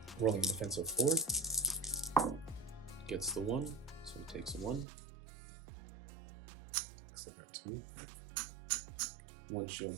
Rolling a defense of 4. Gets the 1, so he takes a 1. Looks like I got 2. 1 shield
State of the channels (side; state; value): left; drops out; at 4.9 s